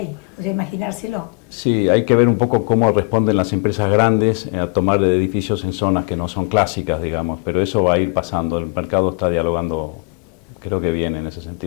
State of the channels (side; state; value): right; quieter; 34.2 dB